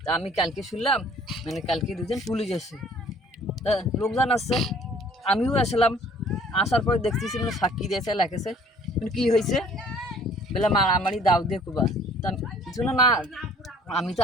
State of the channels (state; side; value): normal; both; correlation 0.55